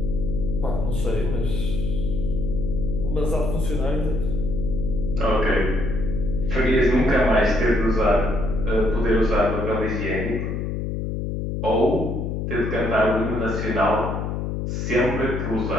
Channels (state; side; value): noise; left; hum, 3 dB below the sound